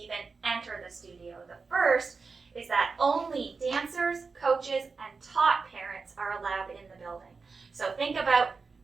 enter the studio. The first is that only dancers, coaches, and taught parents are allowed in the building. So think about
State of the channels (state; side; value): quieter; left; 4.6 dB